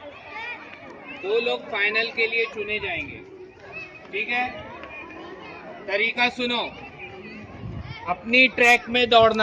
लोग फाइनल के लिए चुने जाएंगे, ठीक है? तरीका सुनो, अपनी ट्रैक में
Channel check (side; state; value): both; identical; correlation 1.00